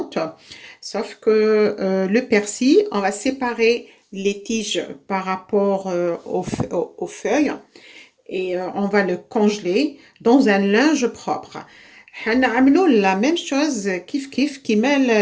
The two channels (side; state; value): both; identical; correlation 1.00